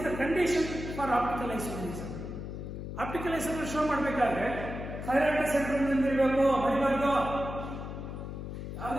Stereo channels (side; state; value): left; noise; hum, 7 dB below the sound